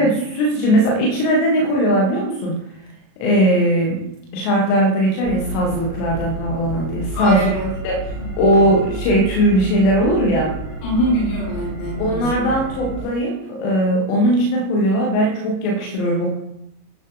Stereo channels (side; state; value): right; late; 37 ms